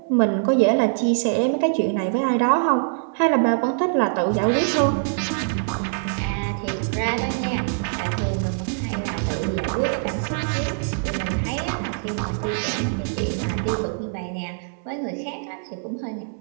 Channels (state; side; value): silent; left; digital silence